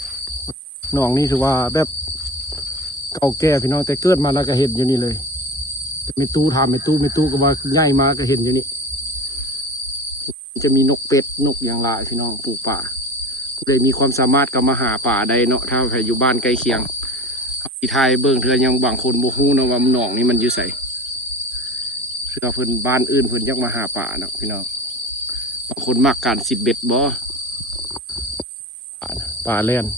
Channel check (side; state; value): both; normal; correlation 0.33